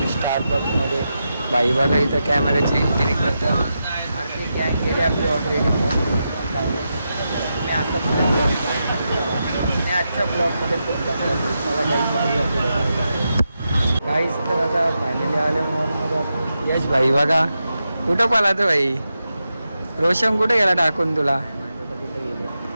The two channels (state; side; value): inverted; both; correlation -0.87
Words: स्टारबक्समध्ये. बाई बघा इथं कॅमेऱ्याची एंट्री करतात. आरती गँग केली आपली ऑलरेडी. मी आता पुढे मी आजच्या ब्लॉगमध्ये खूप कॅमेरा मला गाईज चालू गाईज. तर आता फायनली आले मॉलमध्ये आपण. यश भाई बघा कुठं पालातं भाई. रोशन कुठे गेला टाकून तुला. कुठे गेले